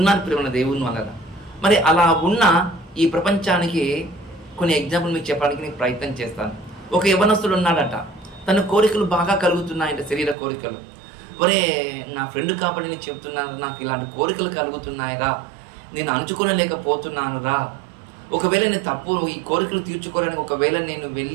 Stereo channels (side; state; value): left; drops out; at 10.4 s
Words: ప్రేమ దేవుని వలన. మరి అలా ఉన్న ఈ ప్రపంచానికి కొన్ని ఎగ్జాంపుల్ మీకు చెప్పడానికి నేను ప్రయత్నం చేస్తాను. ఒక యవ్వనస్తుడు ఉన్నాడట, తన కోరికలు బాగా కలుగుతున్నాయంట, శరీర కోరికలు. ఒరే నా ఫ్రెండ్ కాబట్టి నేను చెప్తున్నాను, నాకు ఇలాంటి కోరికలు కలుగుతున్నాయిరా, నేను అంచుకోలేకపోతున్నాను రా. ఒకవేళ నేను తప్పు, ఈ కోరికలు తీర్చుకోవడానికి ఒకవేళ నేను